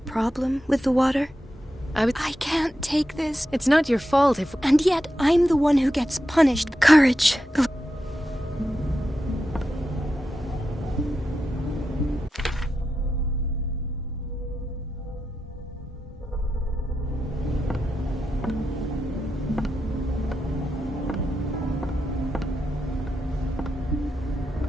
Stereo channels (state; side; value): normal; both; correlation 0.88